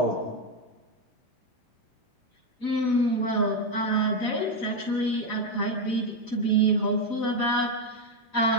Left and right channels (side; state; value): both; normal; correlation 0.06